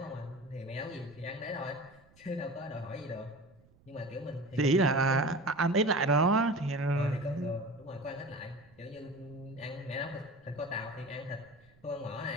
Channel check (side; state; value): right; noise; rumble, 28 dB below the sound